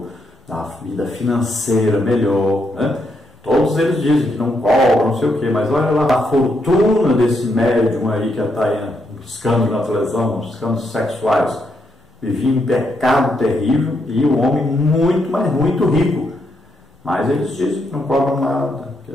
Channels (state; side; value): normal; both; correlation 0.78